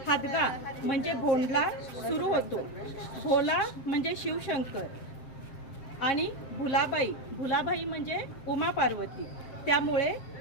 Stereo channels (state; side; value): late; right; 7.5 ms